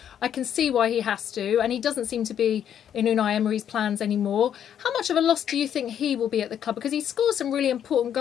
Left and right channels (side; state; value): right; quieter; 9.4 dB